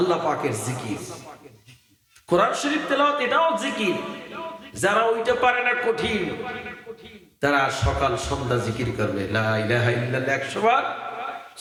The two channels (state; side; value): identical; both; correlation 1.00